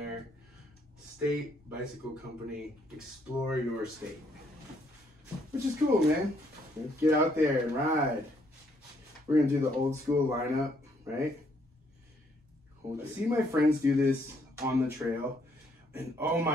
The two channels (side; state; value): both; normal; correlation 0.70